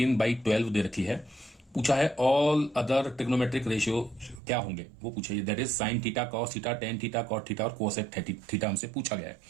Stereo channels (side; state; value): left; drops out; at 4.4 s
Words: दे रखी है। पूछा है ऑल अदर ट्रिग्नोमेट्रिक रेशियो क्या होंगे, वो पूछे that is sine theta, cos theta, tan theta, cot theta और कोसेक थीटा हमसे पूछा गया है।